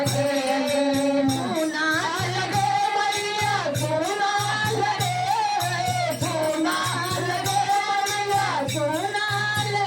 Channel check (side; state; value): both; identical; correlation 1.00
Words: सुना लगे मैया सुना लगे सुना लगे मैया सुना